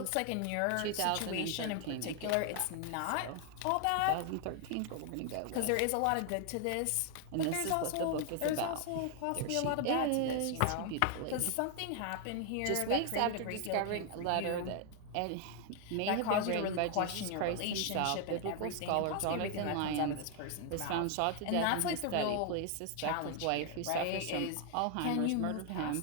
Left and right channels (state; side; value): different; both; correlation 0.00